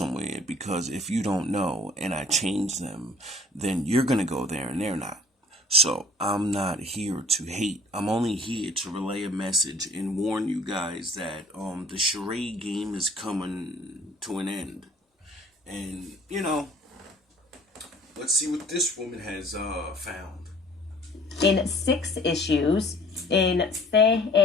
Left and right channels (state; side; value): normal; both; correlation 0.52